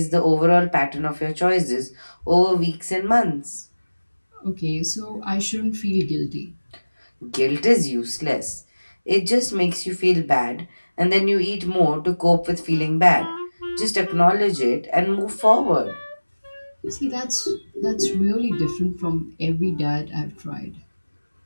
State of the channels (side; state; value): both; inverted; correlation -1.00